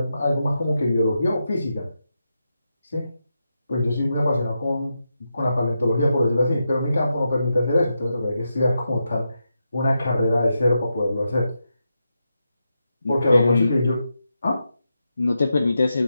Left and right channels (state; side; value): inverted; both; correlation -0.86